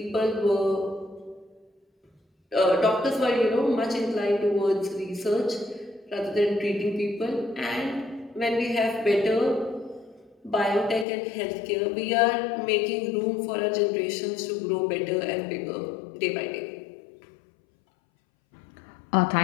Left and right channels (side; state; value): right; drops out; at 11.1 s